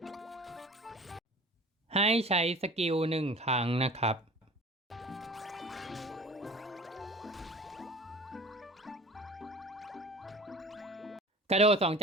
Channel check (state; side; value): normal; both; correlation 0.43